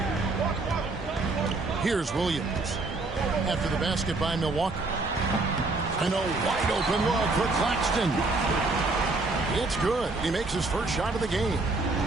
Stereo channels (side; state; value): left; quieter; 3.4 dB